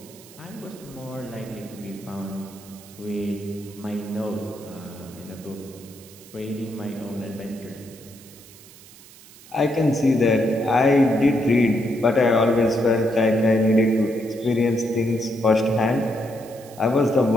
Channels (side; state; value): right; noise; hiss, 21 dB below the sound